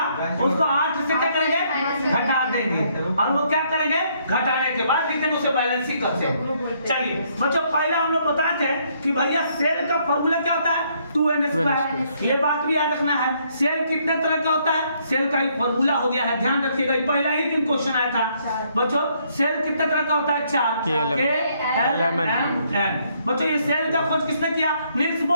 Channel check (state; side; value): inverted; both; correlation -0.70